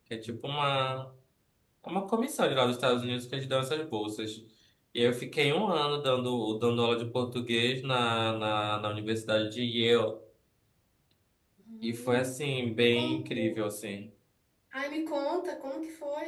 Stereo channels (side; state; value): both; identical; correlation 1.00